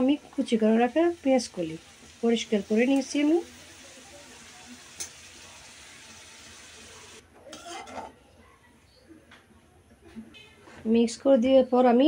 আমি কুচি করে রাখা পেঁয়াজ কলি। পরিষ্কার করে নিয়েছি আমি। মিক্স করে দেওয়ার পর আমি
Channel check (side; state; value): both; identical; correlation 1.00